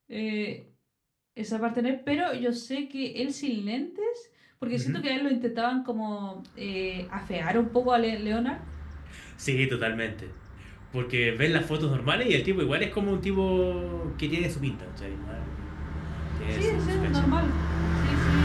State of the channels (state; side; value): identical; both; correlation 1.00